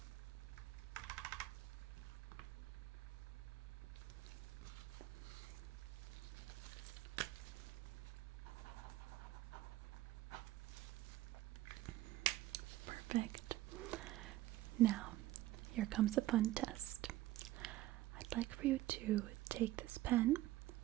Perfect. Now, here comes a fun test. I'd like for you to take this pen,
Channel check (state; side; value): quieter; left; 15.8 dB